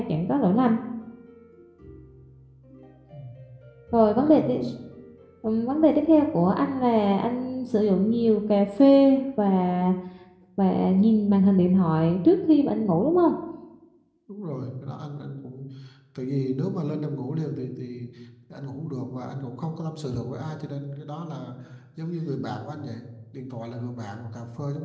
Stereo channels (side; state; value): both; identical; correlation 1.00